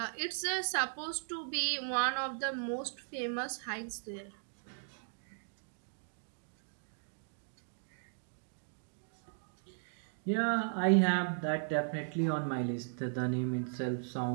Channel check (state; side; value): silent; left; digital silence